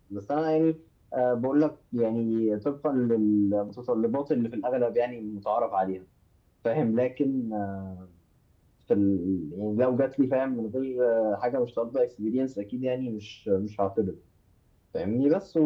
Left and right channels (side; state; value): both; identical; correlation 1.00